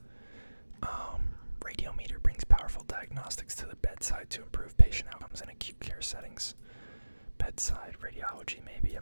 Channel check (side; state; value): both; inverted; correlation -1.00